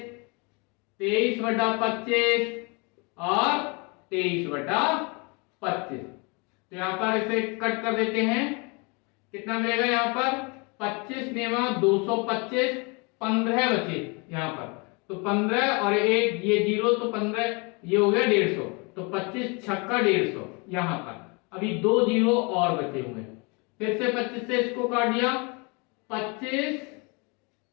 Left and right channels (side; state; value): right; quieter; 30.7 dB